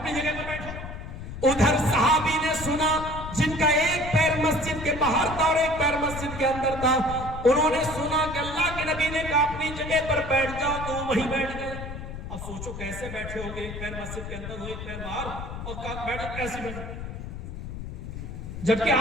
جگہ پر بیٹھو۔ ادھر صحابی نے سنا جن کا ایک پیر مسجد کے باہر تھا اور ایک پیر مسجد کے اندر تھا، انہوں نے سنا کہ اللہ کے نبی نے کہا اپنی جگہ پر بیٹھ جاؤ، تو وہیں بیٹھ گئے۔ اب سوچو کیسے بیٹھے ہو گے، ایک پیر مسجد کے اندر ہو ایک پیر باہر، اور بیٹھو کیسے بیٹھو؟ جبکہ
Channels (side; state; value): left; noise; rumble, 8 dB below the sound